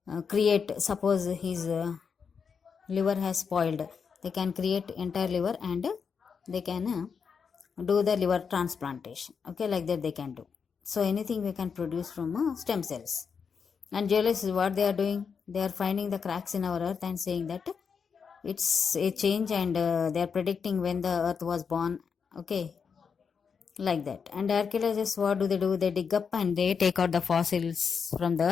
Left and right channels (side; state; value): right; quieter; 6.1 dB